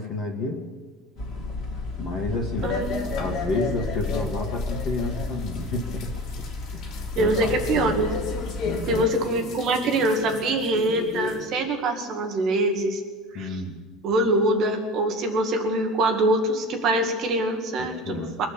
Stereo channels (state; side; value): normal; both; correlation 0.35